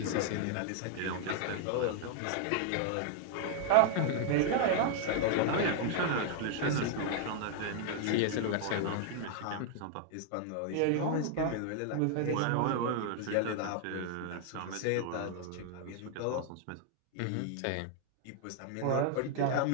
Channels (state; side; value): different; both; correlation 0.00